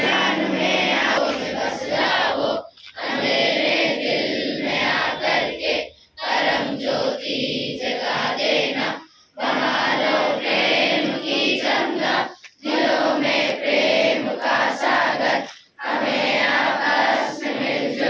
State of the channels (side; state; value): both; identical; correlation 1.00